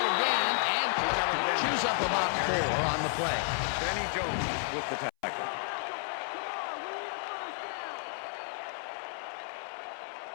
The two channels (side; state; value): right; silent; 57 dB below the other